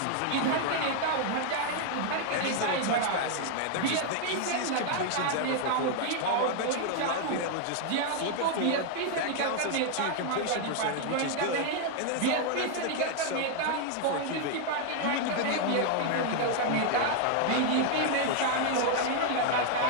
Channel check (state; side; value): different; both; correlation 0.00